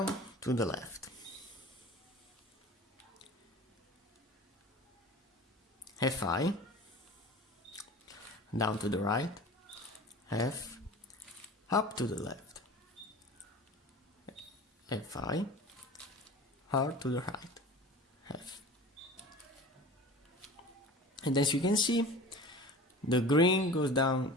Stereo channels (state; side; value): normal; both; correlation 0.38